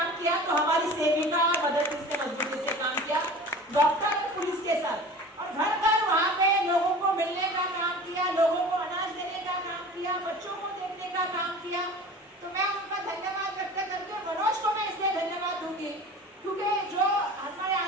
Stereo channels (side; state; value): both; normal; correlation 0.39